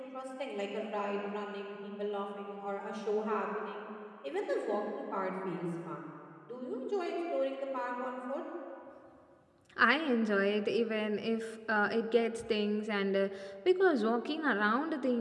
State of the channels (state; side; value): identical; both; correlation 1.00